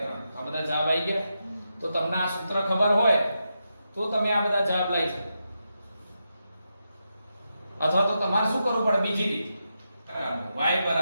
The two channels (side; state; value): both; inverted; correlation -0.87